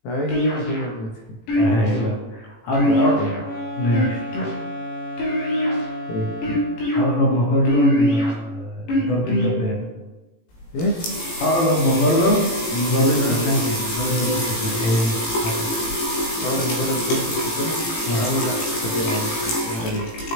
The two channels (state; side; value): late; right; 18 ms